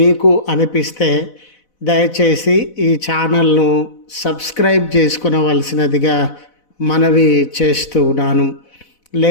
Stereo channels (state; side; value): late; right; 4.0 ms